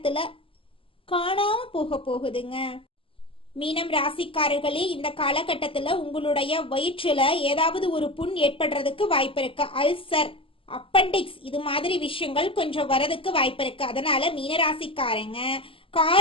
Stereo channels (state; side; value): late; right; 0.26 ms